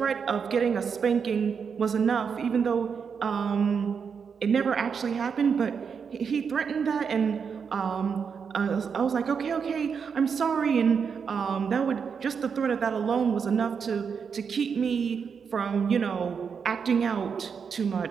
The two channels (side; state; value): left; quieter; 6.3 dB